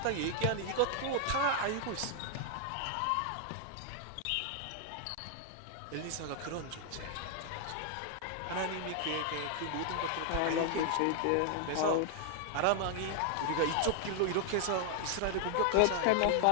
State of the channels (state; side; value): different; both; correlation 0.00